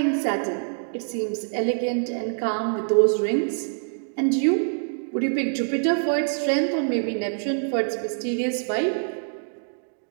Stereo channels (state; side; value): silent; left; digital silence